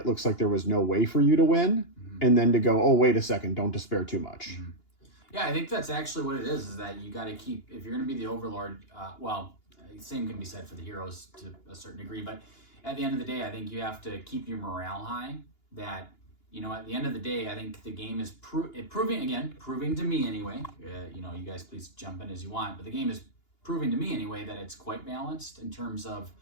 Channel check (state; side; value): late; right; 2.9 ms